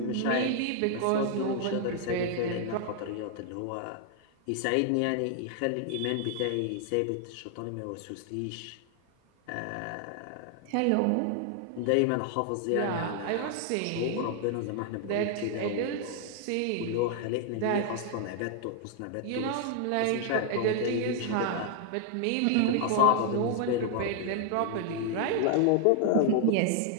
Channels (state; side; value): different; both; correlation 0.00